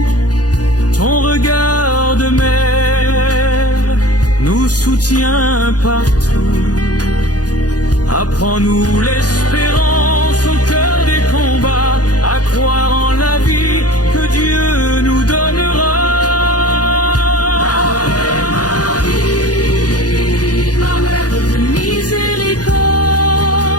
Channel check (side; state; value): right; late; 0.68 ms